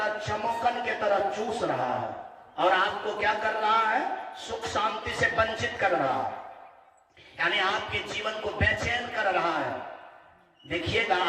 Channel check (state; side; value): identical; both; correlation 1.00